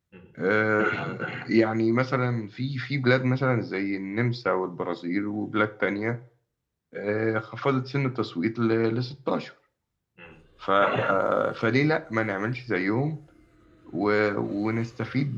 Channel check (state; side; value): identical; both; correlation 1.00